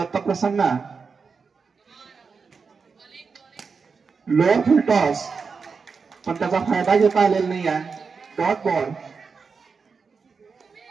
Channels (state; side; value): quieter; left; 5.2 dB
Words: प्रसन्न लोअर फुल टॉस पण त्याचा फायदा घेता आलेला नाही आहे. Dot ball.